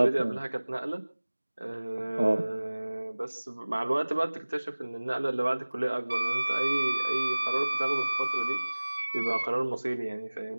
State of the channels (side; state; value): both; inverted; correlation -1.00